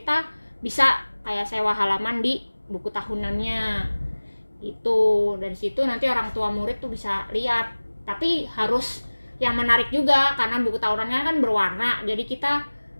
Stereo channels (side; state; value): both; inverted; correlation -1.00